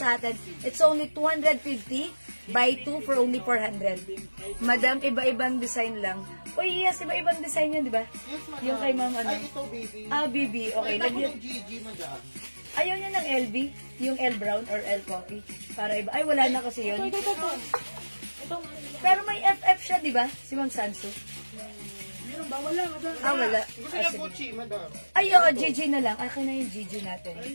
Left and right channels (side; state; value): both; inverted; correlation -1.00